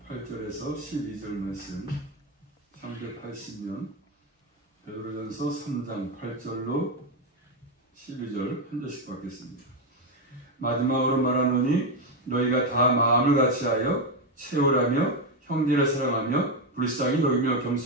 8절에서 12절 말씀 380년 베드로전서 3장 8절로 12절 한 절씩 받겠습니다. 마지막으로 말하노니 너희가 다 마음을 같이하여 채우라며 형제를 사랑하며 불쌍히 여기며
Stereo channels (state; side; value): normal; both; correlation 0.08